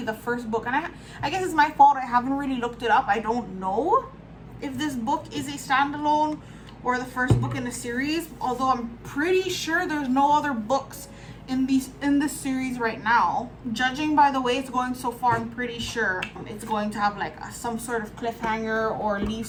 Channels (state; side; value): identical; both; correlation 1.00